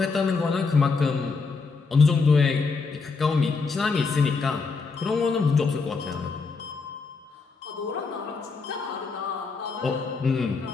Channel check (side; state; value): right; quieter; 4.5 dB